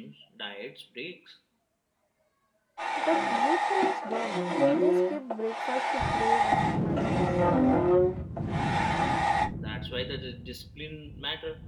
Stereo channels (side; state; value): both; identical; correlation 1.00